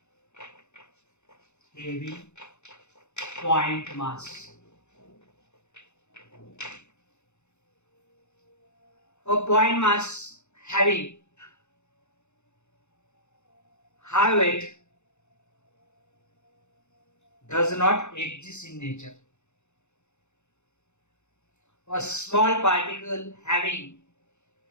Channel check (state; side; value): late; right; 0.82 ms